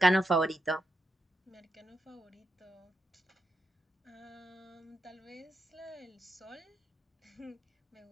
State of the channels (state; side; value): normal; both; correlation 0.83